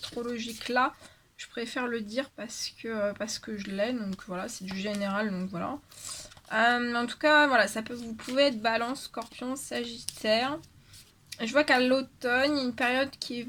là, je préfère le dire parce que je l'ai, donc voilà, c'est du général, donc voilà. En tout cas, voilà, vous pouvez être balance, scorpion, sagittaire. Je vois qu'à l'automne, il y a une période qui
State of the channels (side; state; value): both; identical; correlation 1.00